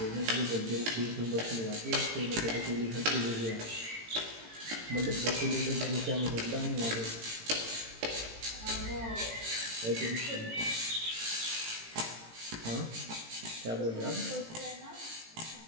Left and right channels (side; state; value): left; late; 18 ms